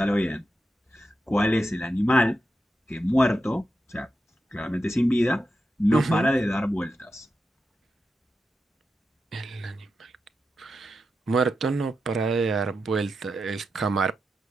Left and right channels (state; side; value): normal; both; correlation 0.88